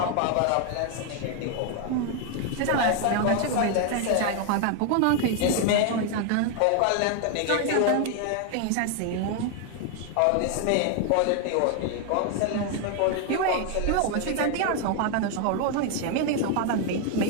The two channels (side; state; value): both; different; correlation 0.01